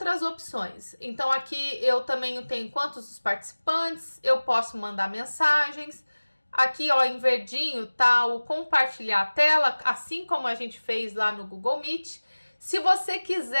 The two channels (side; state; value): both; inverted; correlation -1.00